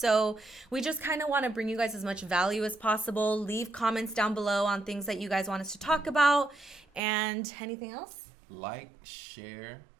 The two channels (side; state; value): left; drops out; at 7.0 s